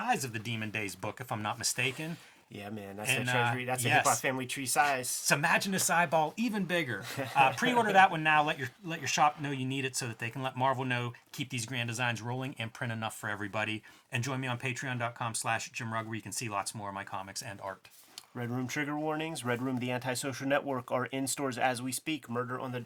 of the Demon Days book, if I'm not mistaken. Yeah, man, that's the Treasury. That's a hip-hop family tree size. So imagine this eyeball even bigger. Pre-order that one now. Let your shop know you need it so that they can let Marvel know, keep these grand designs rolling, and print enough for everybody. And join me on patreon.com/JimRugg, where you can see lots more of my comics and art. Red Room trigger warnings. Red Room, the antisocial network, are in stores as we speak. Murder on the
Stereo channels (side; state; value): both; identical; correlation 1.00